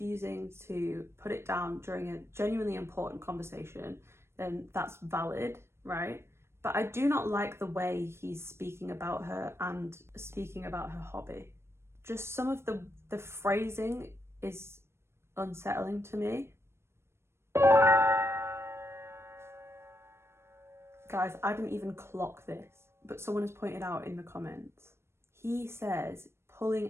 to put it down during a genuinely important conversation, then that's valid, right? But I do not like the way he's speaking about her and speaking about her hobby. Just some of the phrasing is unsettling to me. Guys, I didn't even clock this, but someone has pointed out in the comments. He says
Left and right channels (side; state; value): left; late; 0.12 ms